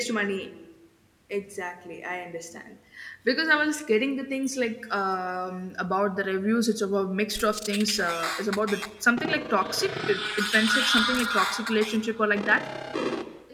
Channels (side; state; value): both; identical; correlation 1.00